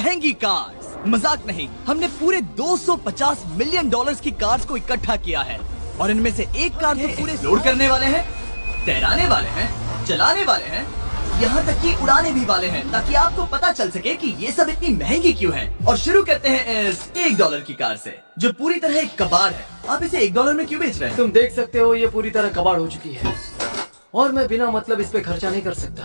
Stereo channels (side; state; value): both; inverted; correlation -1.00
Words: कार्स। मजाक नहीं, हमने पूरे 250 मिलियन डॉलर्स की कार्स को इकट्ठा किया है और इनमें से एक कार तो पूरे लोड करने वाले हैं, तैराने वाले हैं, चलाने वाले हैं, यहाँ तक कि उड़ाने भी वाले हैं, ताकि आपको पता चल सके कि ये सब इतनी महंगी क्यों है। और शुरू करते हैं इस $1 की कार से, जो पूरी तरह एक कबाड़ है। आप इसे $1 में क्यों बेच रहे हैं? तुम देख सकते हो ये पूरी तरह कबाड़ हो चुकी है और मैं बिना मतलब इस पे खर्चा नहीं कर सकता।